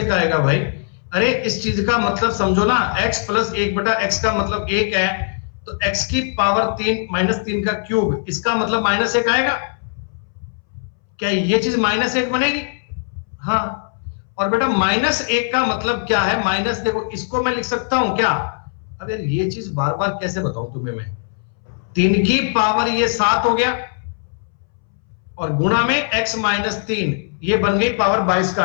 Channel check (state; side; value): silent; right; 64 dB below the other